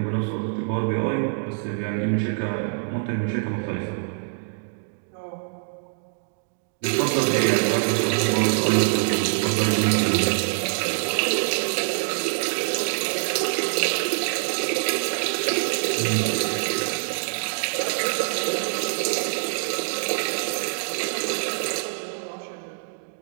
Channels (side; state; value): left; silent; digital silence